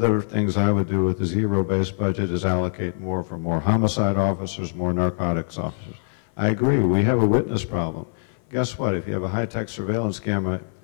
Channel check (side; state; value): right; silent; 57 dB below the other